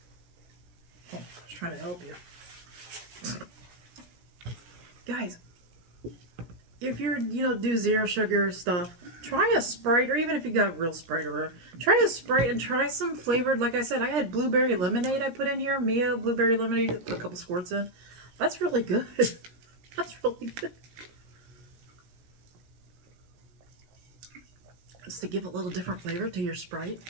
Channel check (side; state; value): left; late; 17 ms